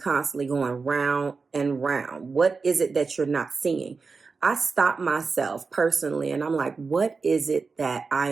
going round and round? What is it that you're not seeing? I stop myself personally and I'm like, what is it that I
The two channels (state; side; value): quieter; left; 4.6 dB